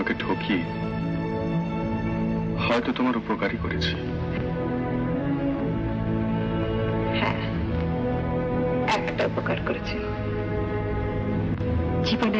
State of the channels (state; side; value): identical; both; correlation 1.00